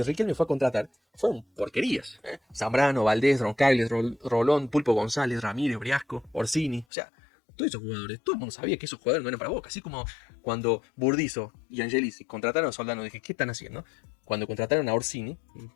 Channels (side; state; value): right; drops out; at 6.9 s